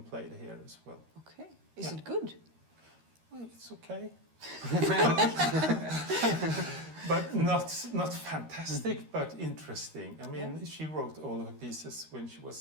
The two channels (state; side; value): late; left; 13 ms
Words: played here as well. Okay. Is Yeah. it good? Well, it's okay. But not fantastic, but interesting. I mean, Yeah. she wrote all of her pieces when she